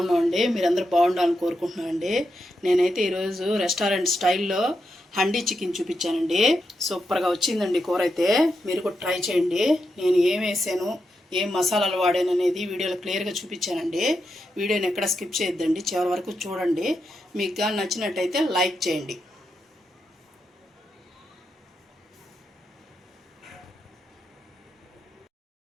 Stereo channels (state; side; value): normal; both; correlation 0.85